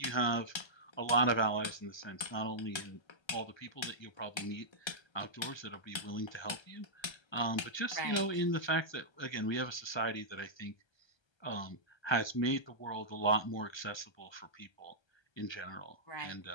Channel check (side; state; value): right; late; 1.3 ms